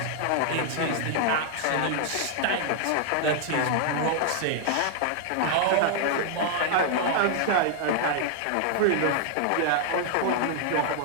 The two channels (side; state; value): both; different; correlation 0.00